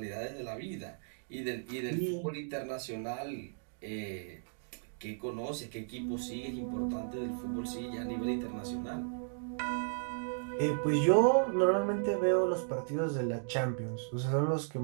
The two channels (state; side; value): silent; left; digital silence